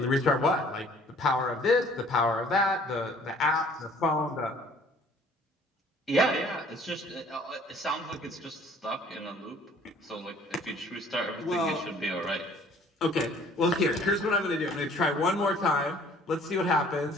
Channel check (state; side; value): normal; both; correlation 0.55